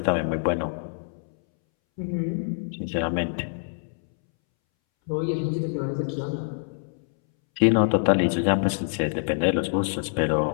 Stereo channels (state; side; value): silent; right; 61 dB below the other